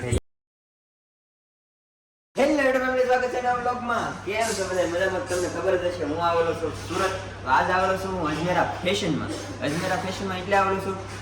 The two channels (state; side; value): identical; both; correlation 1.00